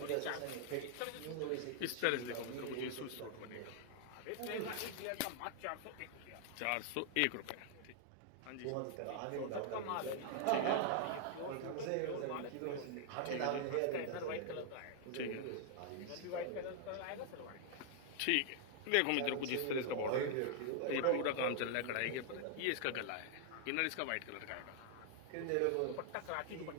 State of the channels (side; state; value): both; different; correlation 0.00